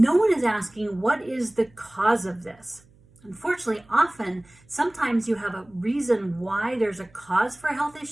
one is asking what is the cause of this. Unfortunately, sometimes you have a reason why there's a cause for a health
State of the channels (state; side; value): noise; right; hum, 29 dB below the sound